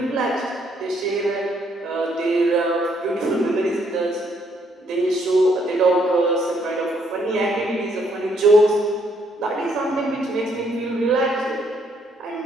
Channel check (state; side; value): normal; both; correlation 0.70